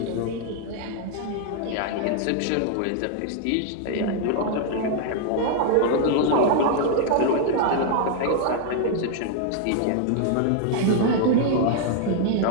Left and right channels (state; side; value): different; both; correlation 0.00